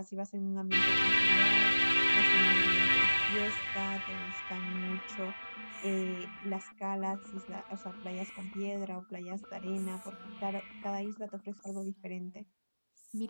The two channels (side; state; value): both; inverted; correlation -1.00